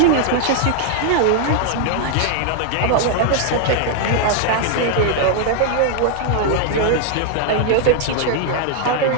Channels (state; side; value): different; both; correlation 0.00